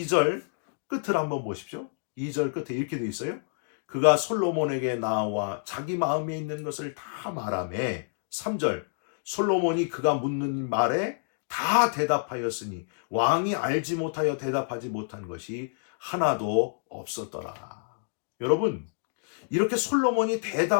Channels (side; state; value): right; silent; digital silence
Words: 끝을 한번 보십시오. 2절 끝에 이렇게 돼 있어요. 그가 솔로몬에게 나와 자기 마음에 있는 것을 다 말하매 3절 솔로몬이 그가 묻는 말에 다 대답하였으니 왕이 알지 못하여 대답하지 못한 것이 하나도 없었더라. 여러분 이렇게 솔로몬이